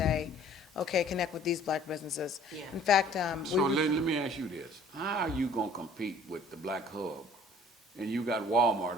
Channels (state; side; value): normal; both; correlation 0.54